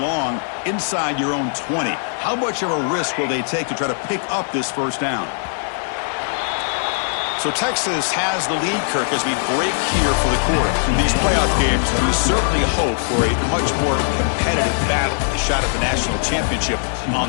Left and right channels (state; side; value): silent; right; digital silence